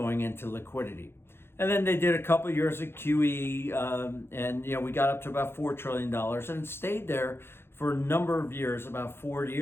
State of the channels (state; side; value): late; right; 0.11 ms